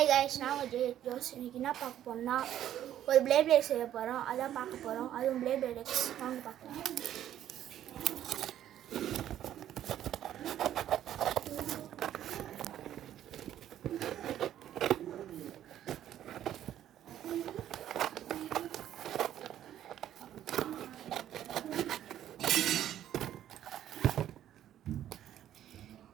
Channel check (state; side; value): quieter; left; 11.4 dB